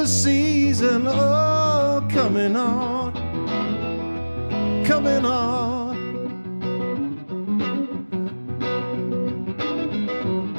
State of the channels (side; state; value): both; inverted; correlation -1.00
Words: season. Oh, coming on, coming on.